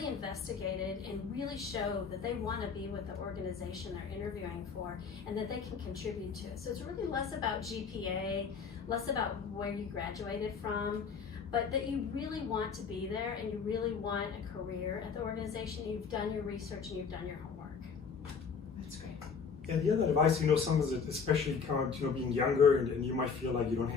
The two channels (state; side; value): quieter; right; 5.8 dB